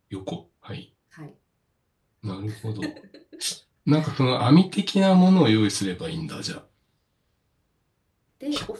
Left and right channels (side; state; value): both; identical; correlation 1.00